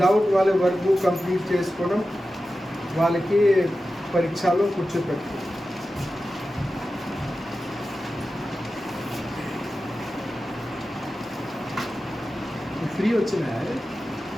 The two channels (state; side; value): normal; both; correlation 0.93